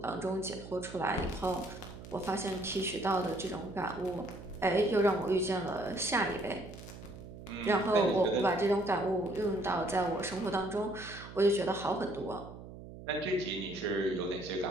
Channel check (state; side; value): noise; right; hum, 14 dB below the sound